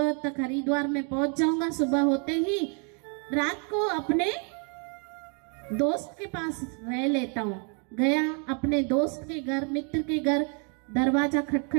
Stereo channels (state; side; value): quieter; left; 37.6 dB